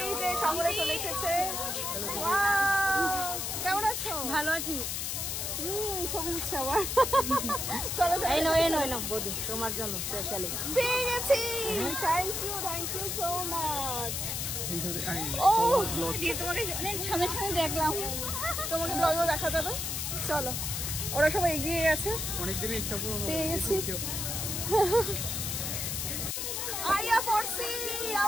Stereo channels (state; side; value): noise; left; hiss, 2 dB below the sound